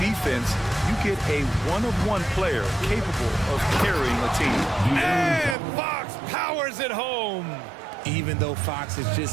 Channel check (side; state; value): left; drops out; at 5.6 s